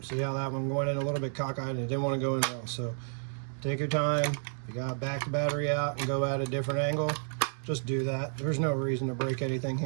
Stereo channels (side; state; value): left; silent; 57 dB below the other